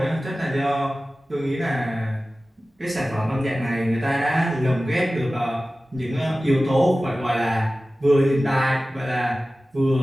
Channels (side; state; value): both; normal; correlation 0.96